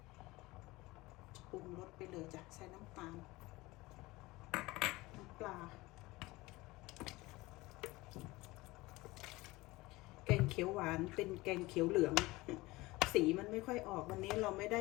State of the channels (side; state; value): right; quieter; 20.7 dB